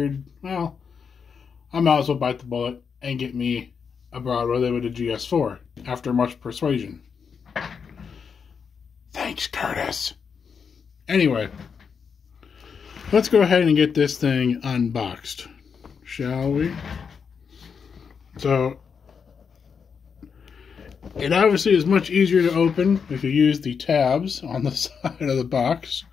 well, I might as well bite the bullet and get me a Broadway Limited GS4 after much persuasion. Thanks, Curtis. Anyway, let's go ahead and get this thing unboxed, shall we? So, it obviously is much easier to open if you use the tabs on the side of the box.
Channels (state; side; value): quieter; right; 6.2 dB